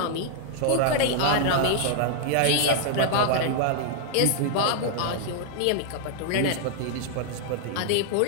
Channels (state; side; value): different; both; correlation -0.01